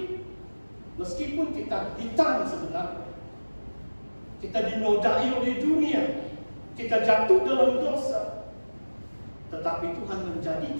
meskipun kita hitam sebenarnya. Kita dinodai oleh dunia, kita jatuh dalam dosa, tetapi Tuhan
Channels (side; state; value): both; inverted; correlation -1.00